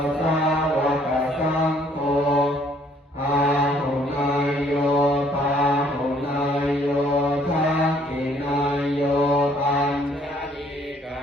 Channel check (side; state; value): both; normal; correlation 0.62